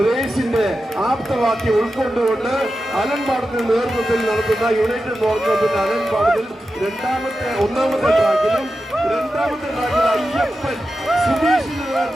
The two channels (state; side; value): normal; both; correlation 0.91